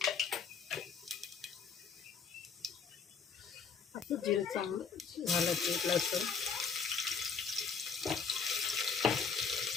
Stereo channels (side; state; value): right; quieter; 5.8 dB